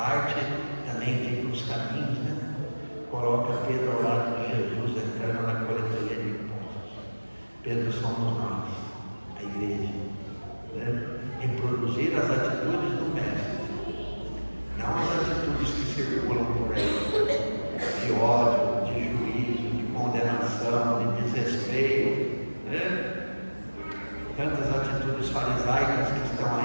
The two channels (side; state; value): both; inverted; correlation -1.00